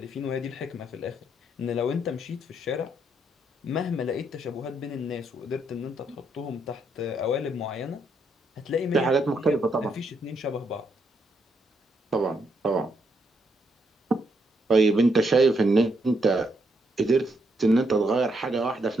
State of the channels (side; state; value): both; normal; correlation 0.76